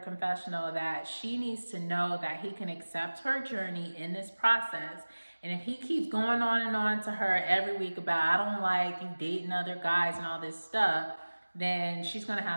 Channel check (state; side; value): inverted; both; correlation -1.00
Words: confessional that she needs to know that he can accept her journey in this process. And if he keeps going on and on to her every week about, I don't like you dating other guys and all this stuff, then she's going to